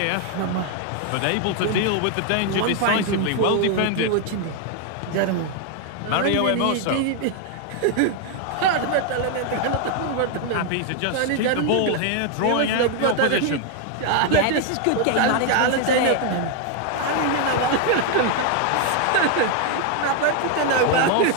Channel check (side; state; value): both; different; correlation 0.01